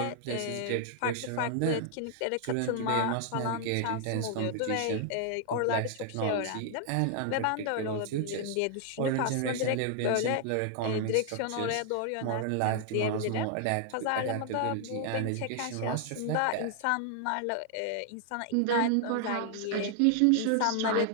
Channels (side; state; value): both; different; correlation 0.00